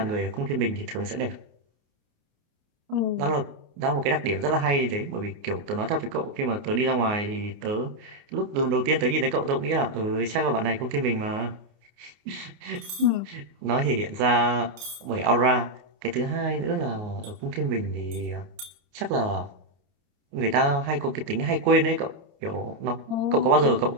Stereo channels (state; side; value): late; left; 29 ms